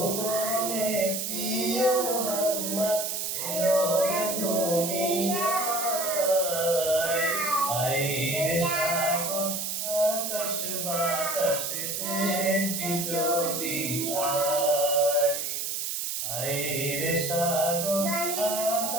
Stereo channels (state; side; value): noise; right; hiss, 2 dB below the sound